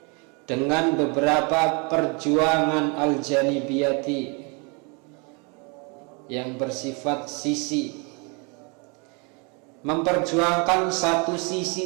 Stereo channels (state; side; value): quieter; left; 32.3 dB